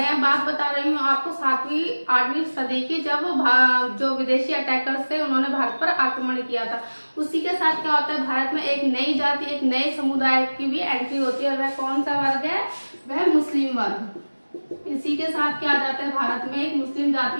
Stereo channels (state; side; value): inverted; both; correlation -1.00